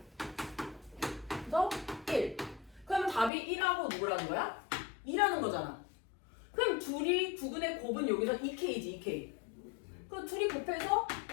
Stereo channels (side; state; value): right; drops out; at 3.3 s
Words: 그래서 1. 그러면 답이 1하고 누구라는 거야? 2라는 거잖아. 그럼 둘이 2분의 곱은 여기서 2k지, 2k. 그럼 둘이 곱해서